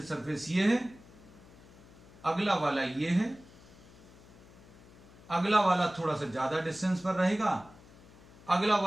सरफेस ये है, अगला वाला ये है, अगला वाला थोड़ा सा ज्यादा डिस्टेंस पर रहेगा, अगला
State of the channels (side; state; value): left; noise; hum, 22 dB below the sound